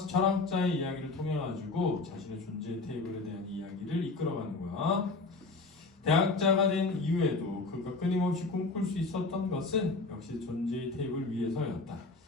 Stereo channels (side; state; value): right; quieter; 3.6 dB